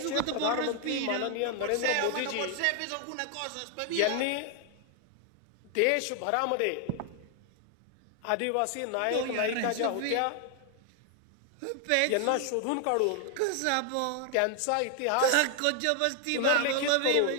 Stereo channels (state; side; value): different; both; correlation 0.00